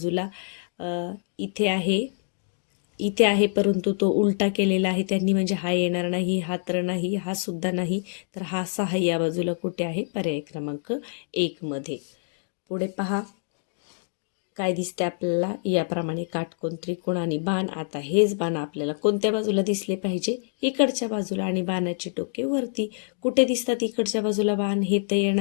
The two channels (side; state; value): right; silent; digital silence